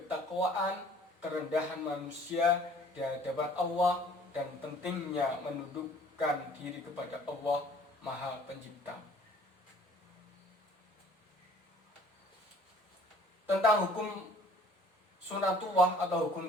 kerendahan manusia di hadapan Allah, dan pentingnya menundukkan diri kepada Allah Maha Pencipta. Tentang hukum sunatullah atau hukum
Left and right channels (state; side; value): normal; both; correlation 0.54